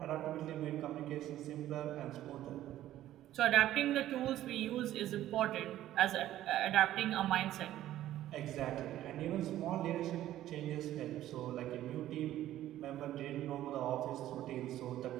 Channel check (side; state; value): left; quieter; 13.4 dB